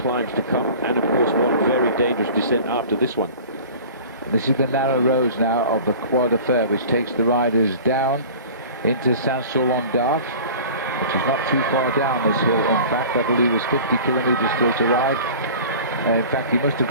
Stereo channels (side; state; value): both; inverted; correlation -0.41